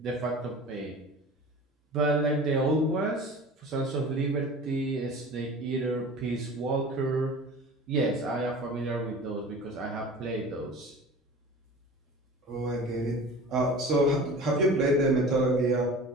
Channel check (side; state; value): both; normal; correlation 0.39